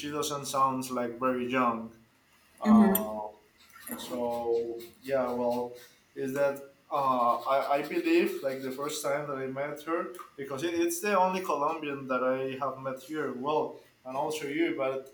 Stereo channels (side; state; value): both; identical; correlation 1.00